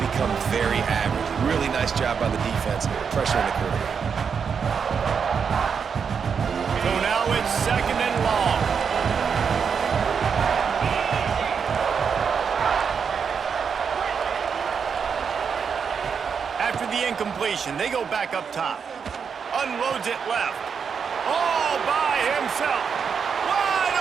become very average. Really nice job by the defense, pressuring the quarterback. So now it's second and long. After the incompletion, they go back up top. Unloads it left. All by himself. Wide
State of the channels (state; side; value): quieter; left; 6.4 dB